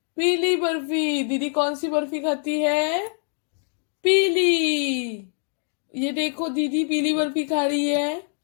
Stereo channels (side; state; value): right; silent; 61 dB below the other